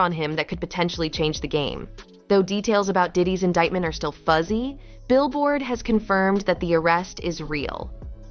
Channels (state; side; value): identical; both; correlation 1.00